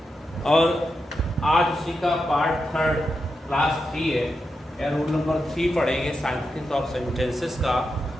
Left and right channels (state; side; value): normal; both; correlation 0.87